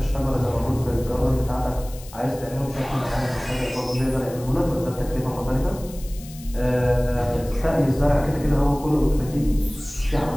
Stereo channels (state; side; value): noise; left; hiss, 19 dB below the sound